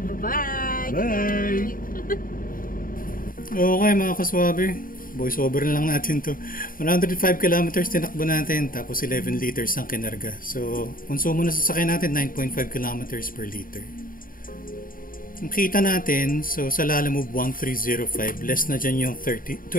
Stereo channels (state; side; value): late; right; 0.41 ms